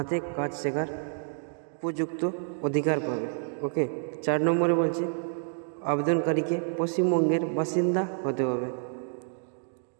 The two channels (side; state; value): left; silent; 59 dB below the other